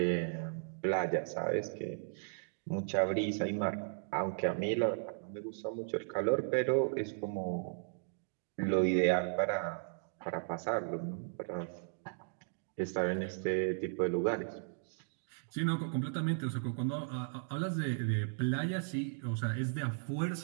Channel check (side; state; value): left; silent; digital silence